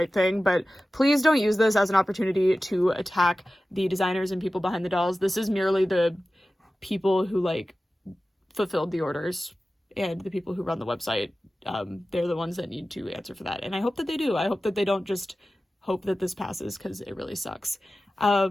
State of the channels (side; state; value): both; normal; correlation 0.95